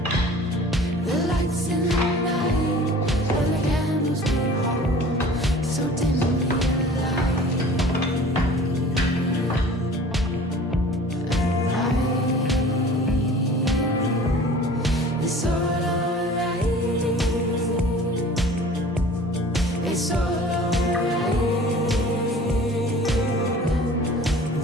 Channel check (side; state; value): both; normal; correlation 0.45